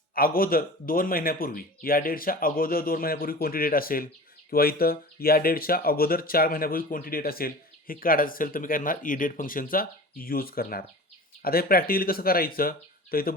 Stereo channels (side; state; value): both; normal; correlation 0.37